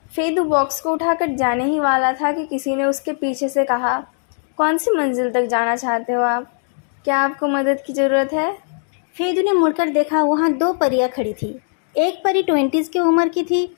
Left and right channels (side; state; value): right; silent; digital silence